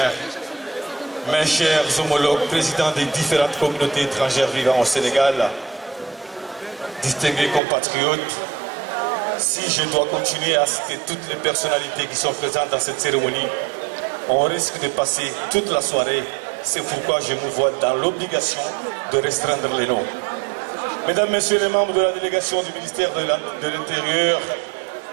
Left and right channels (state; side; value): drops out; left; at 7.6 s